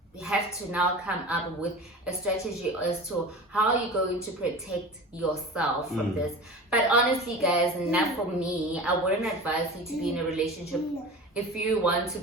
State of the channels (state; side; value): normal; both; correlation 0.34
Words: you have to now come up with a strategy as to how you're going to protect yourself from this. But honestly, guys, not for me. I wouldn't advise you to be in a relationship if you want to